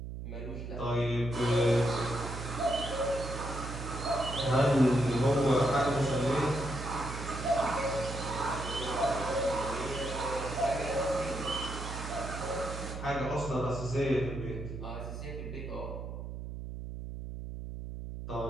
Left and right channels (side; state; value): right; noise; hum, 7 dB below the sound